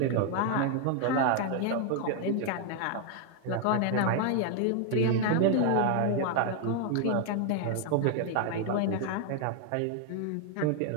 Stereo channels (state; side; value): different; both; correlation 0.00